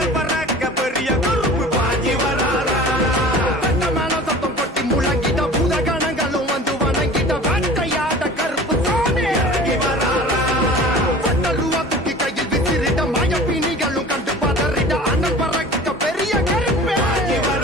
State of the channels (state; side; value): normal; both; correlation 0.41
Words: பறக்க பெரிய கருப்பு பாஞ்சி வராரா மேல சத்தம் கொட்டி முழங்கிட பூதகணங்களும் வந்து வணங்கிட வேட்டையாட கருப்பு சாமி இறங்கி வராரா ரூபா தூக்கி கையில் விசிறிட மயப்பிணிகளும் கண்டு பதறிட அண்ணல் பறக்க பெரிய கருப்பு பாஞ்சி